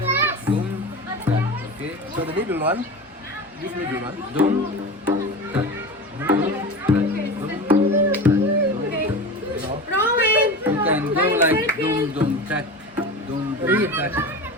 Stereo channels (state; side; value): normal; both; correlation 0.29